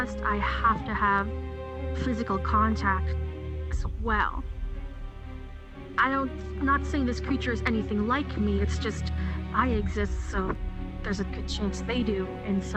I have to have physical contact as well. I'm not saying this creature is anything like me, it's just I exist, so there's a good chance they do in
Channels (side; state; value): both; identical; correlation 1.00